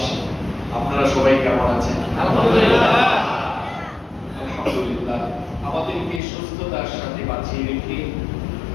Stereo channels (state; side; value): drops out; right; at 6.2 s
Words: আপনারা সবাই কেমন আছেন? আলহামদুলিল্লাহ আমাদেরকে সুস্থতার সাথে বাঁচিয়ে রেখে